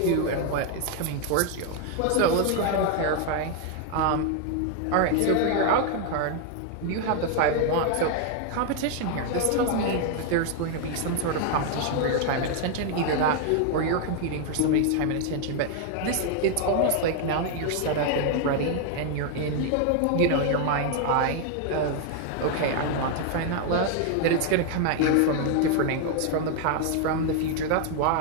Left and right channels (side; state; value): both; different; correlation 0.00